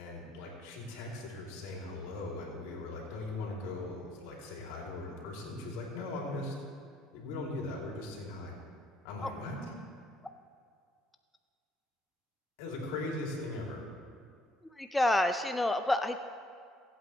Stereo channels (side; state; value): both; normal; correlation 0.67